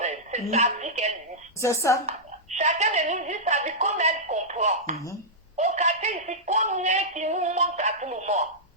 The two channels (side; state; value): both; normal; correlation -0.11